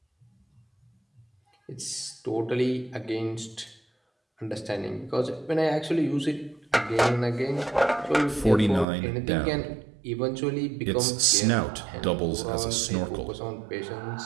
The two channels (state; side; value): drops out; left; at 8.8 s